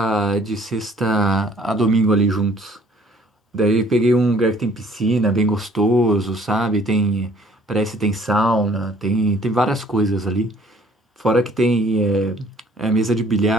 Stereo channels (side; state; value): both; normal; correlation 0.58